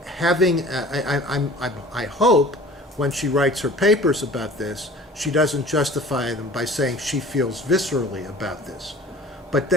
having, I hope, when she writes her papers about this, she doesn't justify them by saying she feels viscerally about this. But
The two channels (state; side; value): normal; both; correlation 0.45